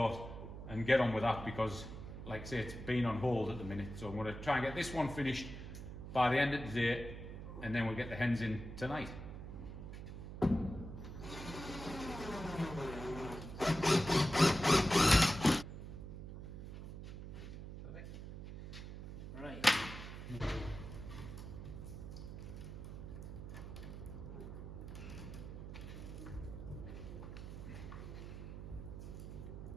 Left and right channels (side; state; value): right; noise; hum, 9 dB below the sound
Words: and get on with that, because like I say, it's been on hold at the minute. So I'm going to try and get this one finished by the end of the day, and then we'll get the hens in tonight. Right.